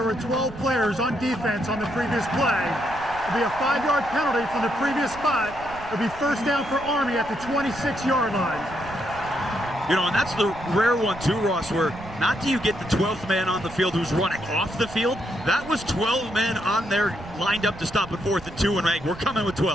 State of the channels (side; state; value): right; noise; rumble, 16 dB below the sound